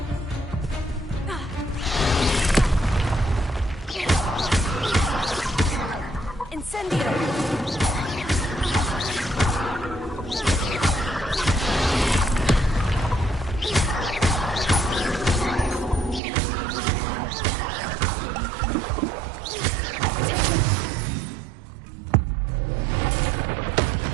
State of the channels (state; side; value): drops out; left; at 16.2 s